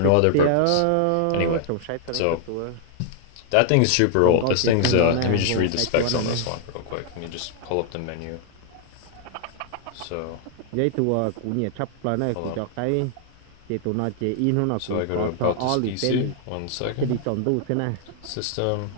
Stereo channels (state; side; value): different; both; correlation 0.00